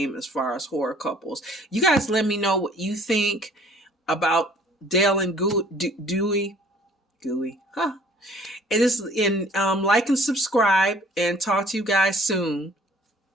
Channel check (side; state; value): both; normal; correlation 0.55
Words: as far as horror couples. You guys let me know what you think about Dale and Dewey. Gooey. Huh. It is in like and subscribe, and talk to you guys soon.